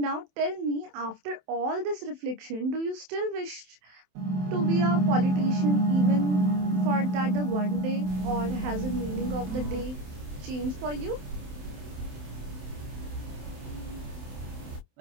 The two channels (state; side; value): late; left; 27 ms